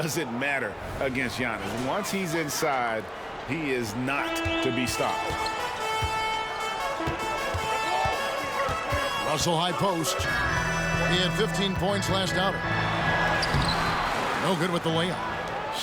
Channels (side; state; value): both; identical; correlation 1.00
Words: matter against Giannis. Once he's inside, he is not to be stopped. Russell high post. He had 15 points last outing. No good with the layup.